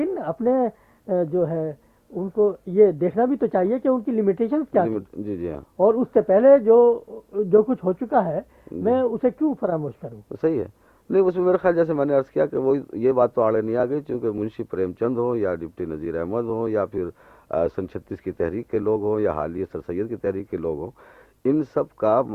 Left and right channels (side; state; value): both; identical; correlation 1.00